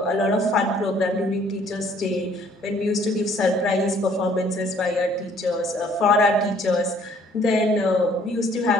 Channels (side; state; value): both; normal; correlation 0.60